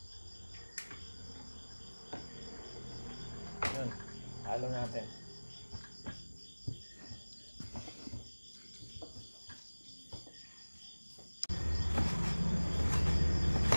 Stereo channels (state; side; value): inverted; both; correlation -1.00